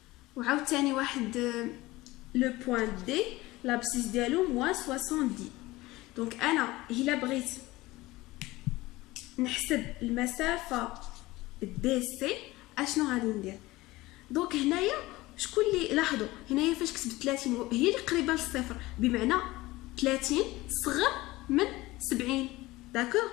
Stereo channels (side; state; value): right; quieter; 19.4 dB